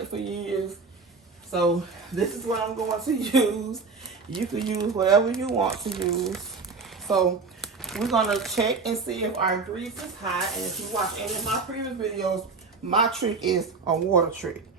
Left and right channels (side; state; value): left; quieter; 4.5 dB